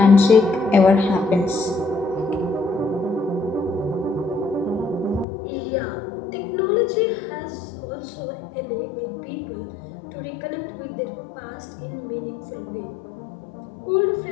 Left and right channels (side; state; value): right; drops out; at 5.2 s